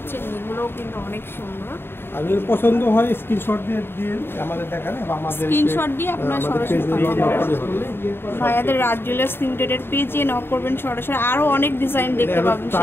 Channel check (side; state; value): right; late; 0.11 ms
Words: চেন, এগুলোও কিন্তু অনেক সুন্দর। আর যদি পছন্দ হয় স্ক্রিনশট দিয়ে আমাদের দেখান, এবং আমাদের স্ক্রিনশট দিয়ে আপনারা সরাসরি ভাইয়াদের রাজ জুয়েলার্স লিমিটেডের পেজে নক করবেন সরাসরি। আরো অনেক ডিজাইন দেখতে পাবেন